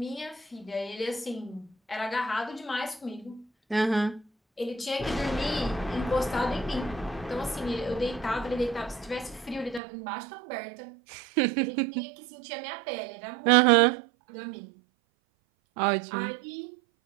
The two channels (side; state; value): left; drops out; at 9.8 s